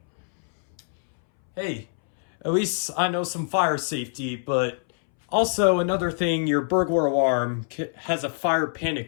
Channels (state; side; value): silent; right; 62 dB below the other